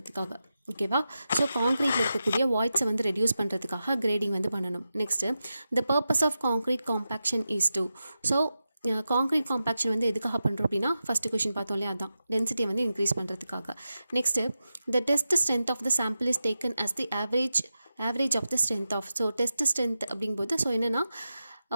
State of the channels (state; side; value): inverted; both; correlation -0.91